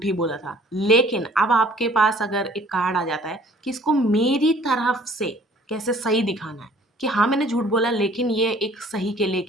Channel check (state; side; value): normal; both; correlation 0.54